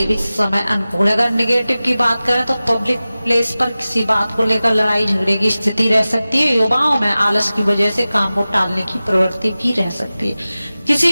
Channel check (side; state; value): both; inverted; correlation -0.96